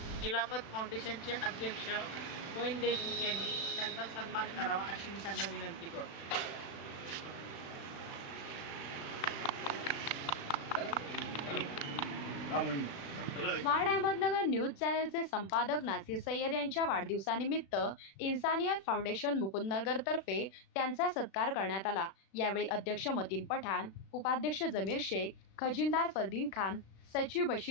खिलाफत फाउंडेशनचे अध्यक्ष मोईन देशमुख यांनी त्यांचा सन्मान करावा अशी मी त्यांना विनंती करतो. स्मार्ट अहमदनगर न्यूज चॅनलचे संपादक नासिर सय्यद यांच्या वाढदिवसानिमित्त इन्सानियत फाउंडेशन मुकुंदनगर तर्फे त्यांचा सत्कार करण्यात आला. यावेळी अध्यक्ष मतीन पठाण, उपाध्यक्ष जमीर शेख, खजिनदार फरदीन खान, सचिव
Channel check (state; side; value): late; right; 36 ms